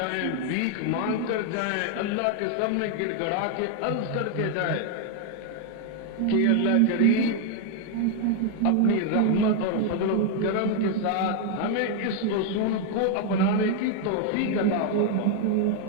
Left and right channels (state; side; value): different; both; correlation 0.00